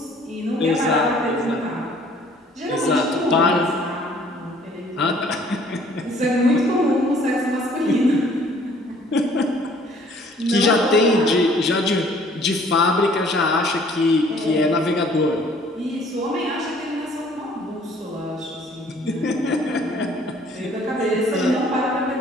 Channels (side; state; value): both; normal; correlation 0.57